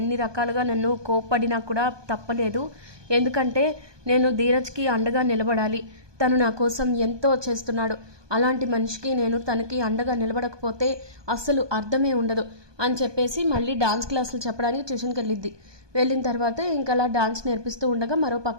రకాలుగా నన్ను కోప్పడినా కూడా తప్పలేదు, ఎందుకంటే నేను ధీరజ్కి అండగా నిలబడాలి. తను నా కోసం ఎంతో చేస్తున్నాడు. అలాంటి మనిషికి నేను తనకి అండగా నిలబడకపోతే అస్సలు అర్థమే ఉండదు అని చెప్పేసి మళ్ళీ డాన్స్ క్లాసులు చెప్పడానికి ట్యూషన్కి వెళ్ళిన తర్వాత ఇంకా అలా డాన్స్ నేర్పిస్తూ ఉండగా మరో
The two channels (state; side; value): late; left; 1.2 ms